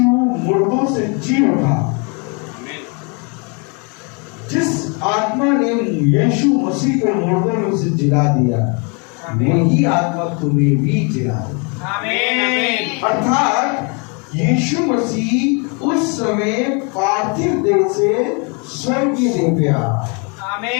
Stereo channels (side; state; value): right; quieter; 34.1 dB